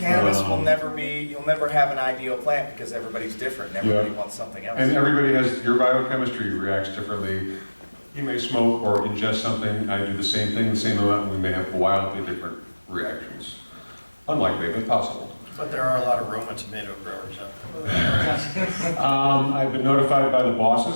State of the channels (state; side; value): inverted; both; correlation -1.00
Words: will never be, you'll never have an ideal plant because everybody's different and everybody wants something else. And everybody has, your biochemistry reacts differently. You may smoke or ingest something, I do the same thing, the same amount, and we may have wildly different reactions. Unlikely, but possible. But there are a lot of Roma tomato growers out there. I've been notified by the